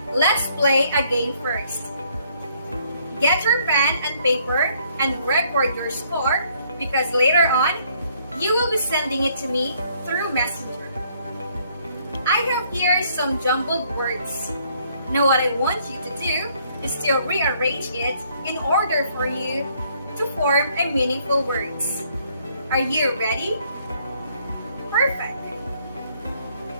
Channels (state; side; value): inverted; both; correlation -0.66